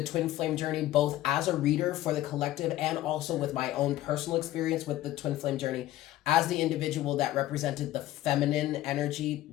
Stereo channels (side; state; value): right; quieter; 14.7 dB